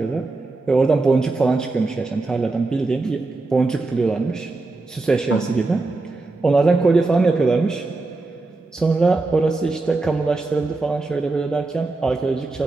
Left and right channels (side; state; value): left; quieter; 3.4 dB